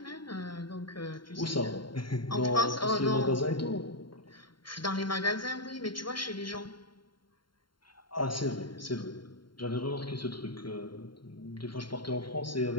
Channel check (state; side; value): late; right; 0.72 ms